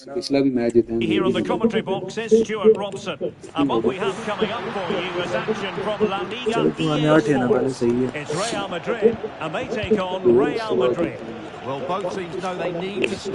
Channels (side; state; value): both; identical; correlation 1.00